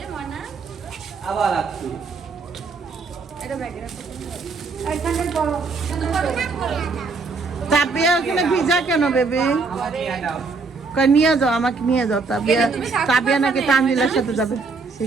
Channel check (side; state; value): left; quieter; 4.3 dB